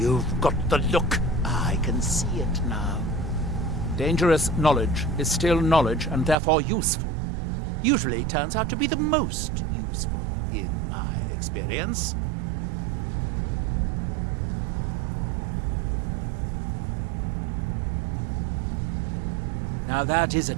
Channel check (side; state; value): left; drops out; at 6.4 s